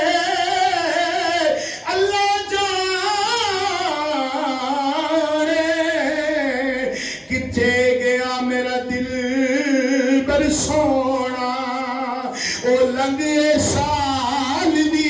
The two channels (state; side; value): identical; both; correlation 1.00